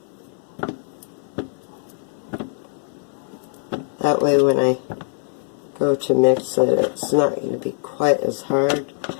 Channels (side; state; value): right; silent; 60 dB below the other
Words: That way when I go to mix it, it's not going to be quite as hard